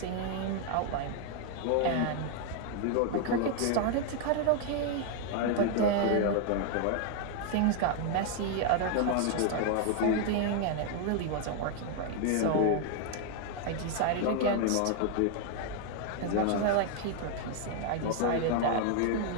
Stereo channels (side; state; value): both; different; correlation 0.00